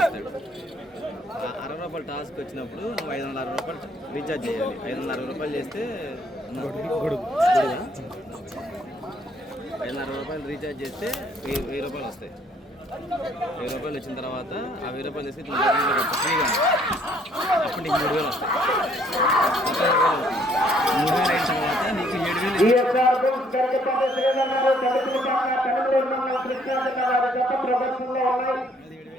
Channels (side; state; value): both; normal; correlation 0.64